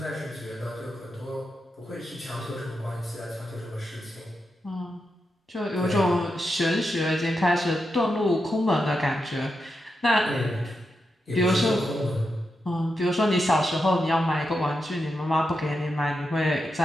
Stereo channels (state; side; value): normal; both; correlation 0.87